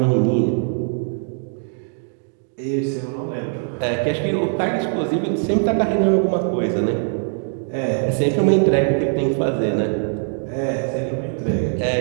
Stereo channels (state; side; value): silent; left; 56 dB below the other